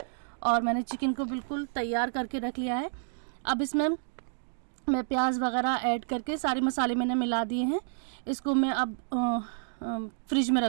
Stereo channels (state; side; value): silent; left; digital silence